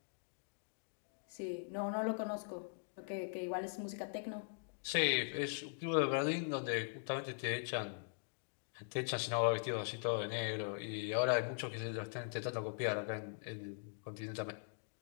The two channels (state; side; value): silent; right; digital silence